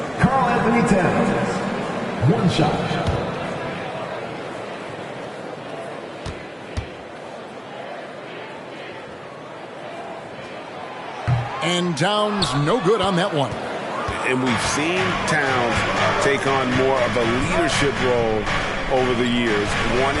Karl Anthony Towns. 1 shot. And Towns no good on that one. And we've seen Towns take on more of a leadership role over the years,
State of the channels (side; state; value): both; identical; correlation 1.00